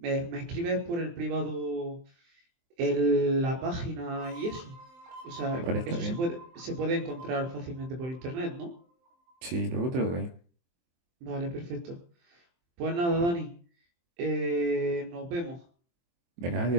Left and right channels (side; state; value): left; late; 23 ms